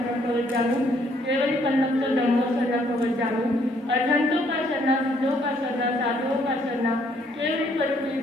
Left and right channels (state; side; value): normal; both; correlation 0.67